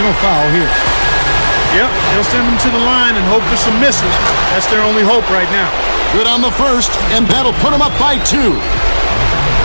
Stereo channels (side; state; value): both; inverted; correlation -1.00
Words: foul here. Yep, they'll send them to the line and hope for some misses. That's their only hope right now. Good on the first, and that'll put them up by 2.